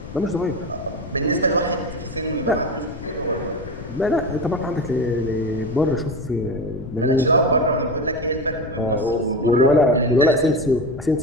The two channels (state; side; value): noise; left; rumble, 13 dB below the sound